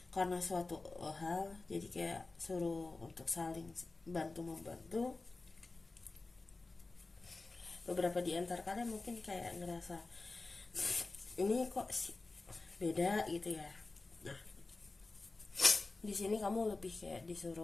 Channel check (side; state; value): right; quieter; 3.5 dB